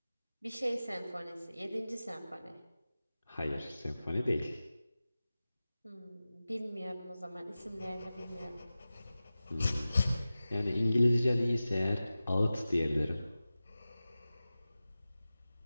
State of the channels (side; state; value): both; inverted; correlation -0.96